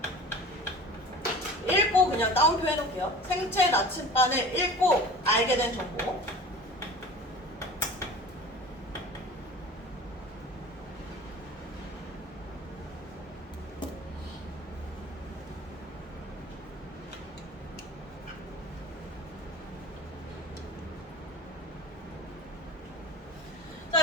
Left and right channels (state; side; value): normal; both; correlation 0.39